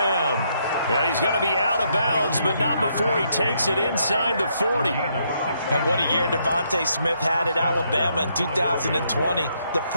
And he's going to be out of bounds, but not before he takes it inside the 40. And what a year Devontae Smith had at Alabama in 2020. The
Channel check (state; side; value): inverted; both; correlation -0.74